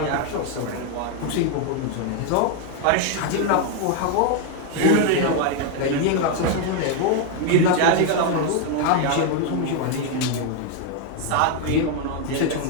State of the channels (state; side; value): different; both; correlation 0.01